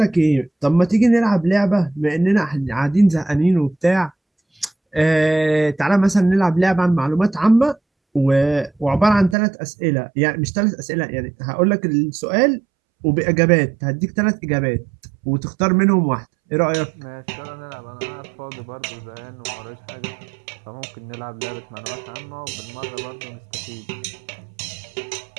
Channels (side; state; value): left; drops out; at 9.3 s